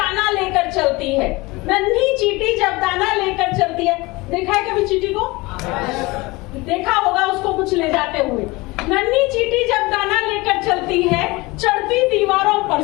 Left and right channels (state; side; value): quieter; right; 22.8 dB